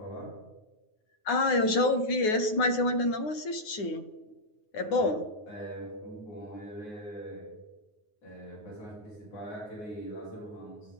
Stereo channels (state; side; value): late; right; 9.5 ms